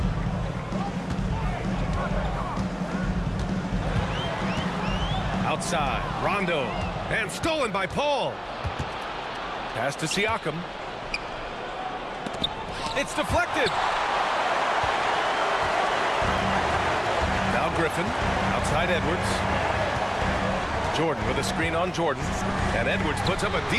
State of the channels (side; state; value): both; identical; correlation 1.00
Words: Outside, Rondo. And stolen by Paul. Pass to Siakam. It's deflected. Now Griffin, outside Edwards. Jordan with a screen on Jordan. And Edwards puts up a